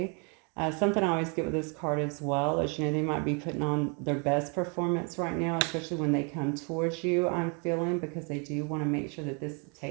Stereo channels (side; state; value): left; quieter; 35.0 dB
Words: Something I always get with this card as well is, you know, they might be putting on their best performance right now, especially when they come towards you, I'm feeling, because they do want to make sure that this